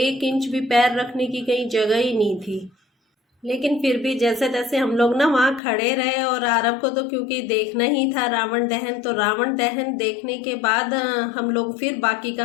इंच भी पैर रखने की कहीं जगह ही नहीं थी। लेकिन फिर भी जैसे तैसे हम लोग ना वहाँ खड़े रहे, और आरव को तो क्योंकि देखना ही था रावण दहन, तो रावण दहन देखने के बाद हम लोग फिर बाकी का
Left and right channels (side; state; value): right; drops out; at 5.6 s